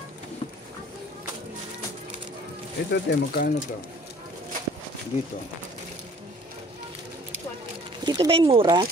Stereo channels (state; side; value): normal; both; correlation 0.53